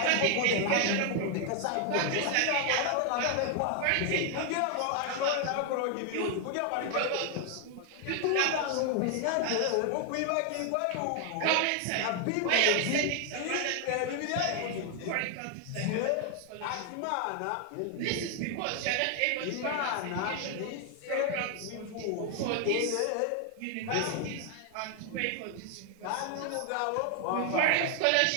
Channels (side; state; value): both; different; correlation 0.00